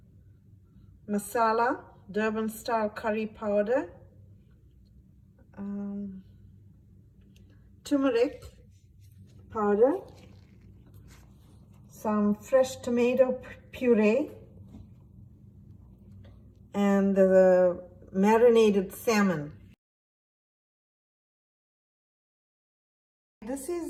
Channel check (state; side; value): identical; both; correlation 1.00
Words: masala, Durban-style curry powder, turmeric powder, some fresh tomato puree, and the marinated salmon. This